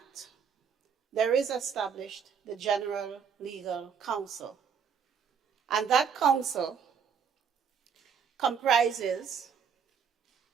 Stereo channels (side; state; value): left; quieter; 6.9 dB